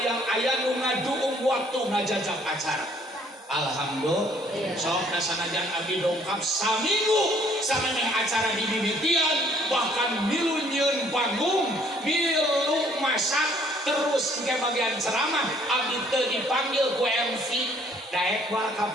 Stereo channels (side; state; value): both; normal; correlation 0.61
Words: nu ngaduung waktu ngajajak acara alhamdulillah sok dasanajan abdi dongkap saminggu samemeh acara di mimitian bahkan milu nyieun panggung milu masak terus ke bagian ceramah abdi teu dipanggil ku MC daek wal ka